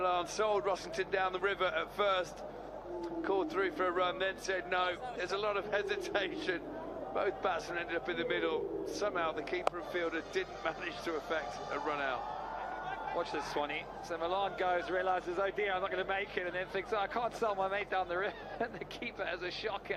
sold Rossington down the river at first, called through for a run, then said no. There's a lot of hesitation. Both batsmen ended up in the middle. Somehow the keeper and fielder didn't manage to effect a run out. Watch this, Swanee. So Milan goes, realises, oh dear, I'm not going to make it, and then thinks, oh, I can't sell my mate down the river, and the keeper has a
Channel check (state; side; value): identical; both; correlation 1.00